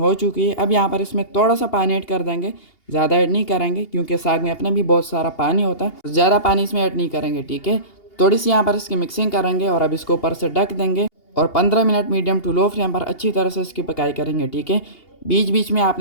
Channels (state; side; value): late; right; 2.8 ms